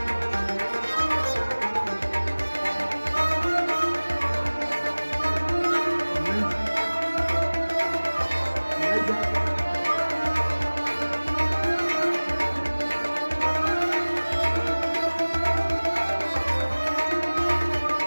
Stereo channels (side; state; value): both; inverted; correlation -1.00